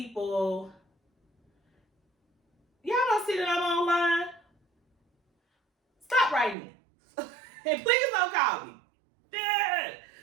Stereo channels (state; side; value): drops out; left; at 6.6 s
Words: y'all don't see that I'm online? Stop writing me. And please don't call me.